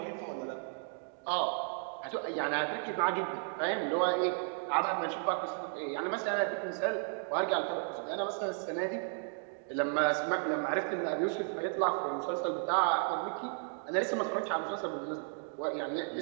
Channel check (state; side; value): silent; left; 55 dB below the other